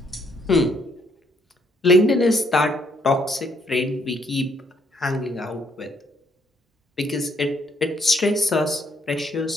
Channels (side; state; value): both; normal; correlation 0.70